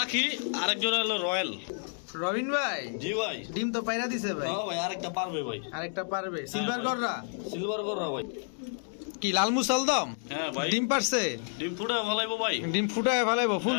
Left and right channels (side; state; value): right; silent; 58 dB below the other